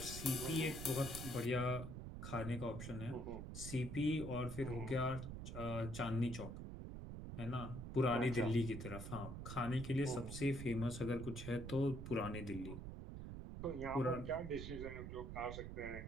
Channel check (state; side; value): noise; right; rumble, 7 dB below the sound